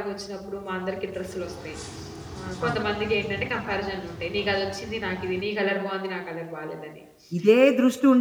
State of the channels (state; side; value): identical; both; correlation 1.00